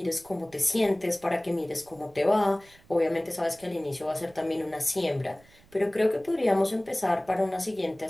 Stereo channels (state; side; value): noise; right; rumble, 27 dB below the sound